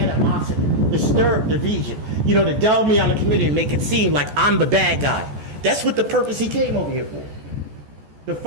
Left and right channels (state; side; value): late; left; 14 ms